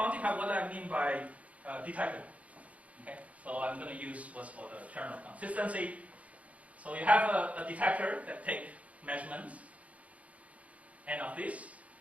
what I mean by detectable. Okay, so I'm going to use what's called a term of consistency. So you have a detector that takes measurements, n of this,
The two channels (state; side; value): late; left; 0.067 ms